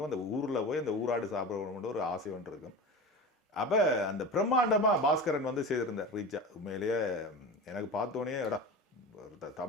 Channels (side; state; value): both; normal; correlation 0.30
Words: அந்த ஊரில் போய் அந்த ஊராடு சாப்பிடணும்னு ஒரு ஆசை ஒன்று இருக்கும். அப்போ அந்த பிரம்மாண்டமாக பாஸ்கரன் வந்து செய்திருந்தார் ரீச்சா. உண்மையிலேயே எனக்கு பார்த்தோன்னே எடா